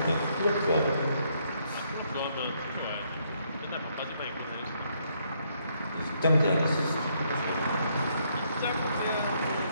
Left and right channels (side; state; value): both; inverted; correlation -0.72